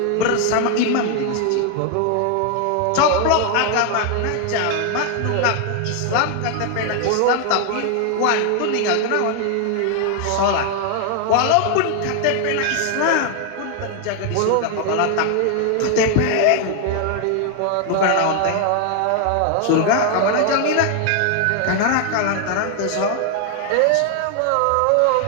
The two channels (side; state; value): both; different; correlation 0.00